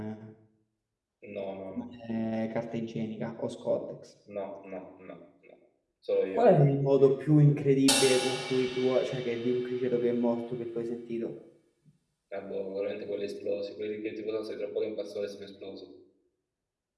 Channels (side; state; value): both; identical; correlation 1.00